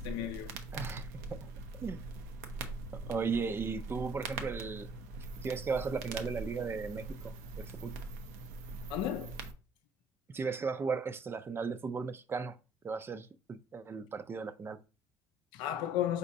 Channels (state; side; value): normal; both; correlation 0.58